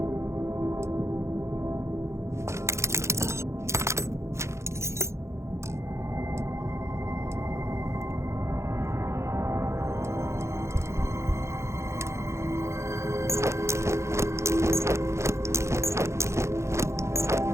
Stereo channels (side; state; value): left; late; 0.14 ms